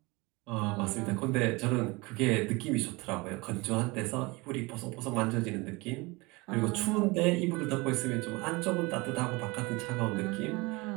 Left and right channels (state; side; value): quieter; left; 24.6 dB